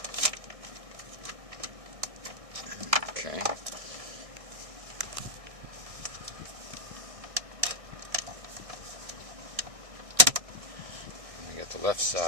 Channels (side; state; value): left; late; 1.6 ms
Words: Okay. We got the left